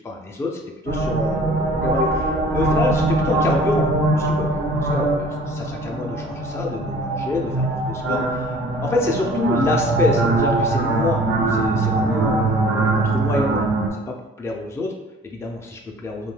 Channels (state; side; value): normal; both; correlation 0.50